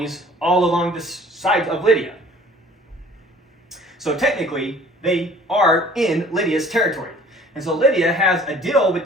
all along this side of Lydia. So technically, they are in Lydia's territory. And so Lydia has a deal with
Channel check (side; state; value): both; normal; correlation 0.51